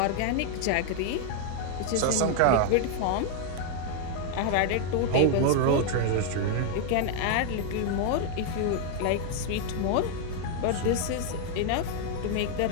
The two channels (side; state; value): both; different; correlation 0.00